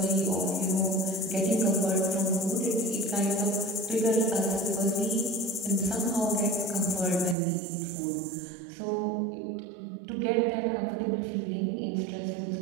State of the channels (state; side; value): drops out; left; at 7.4 s